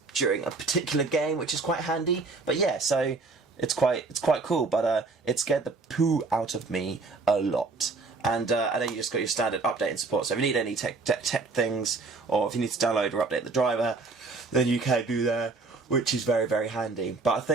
during a particular game, which is quite handy. But yeah, so it's quite cool. But it scared the poo out of me a lot. and then you just got your standard update and support. So if you need any tech things, or if you need to download or update the driver, then you can do that, which is very, very handy. But I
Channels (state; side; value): quieter; left; 3.8 dB